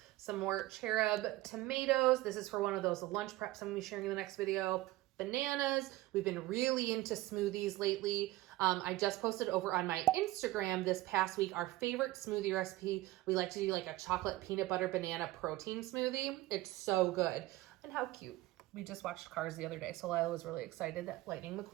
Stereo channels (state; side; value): quieter; left; 17.8 dB